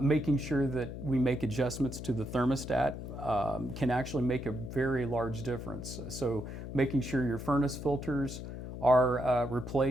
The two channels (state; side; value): noise; left; hum, 9 dB below the sound